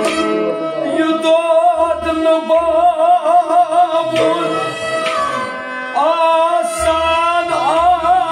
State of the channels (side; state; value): both; identical; correlation 1.00